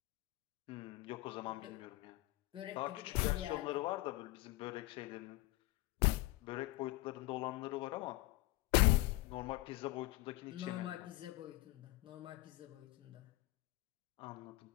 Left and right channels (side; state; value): right; quieter; 20.5 dB